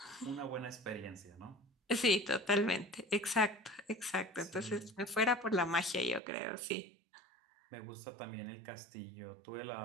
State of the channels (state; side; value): drops out; left; at 6.2 s